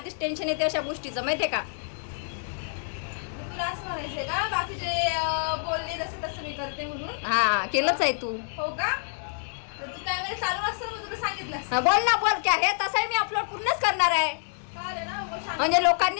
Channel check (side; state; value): right; silent; digital silence